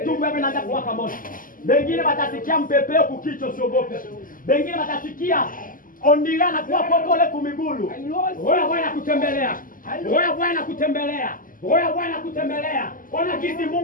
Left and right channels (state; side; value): late; right; 0.40 ms